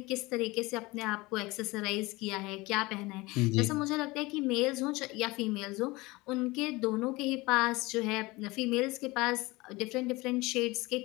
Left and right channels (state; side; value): quieter; right; 22.3 dB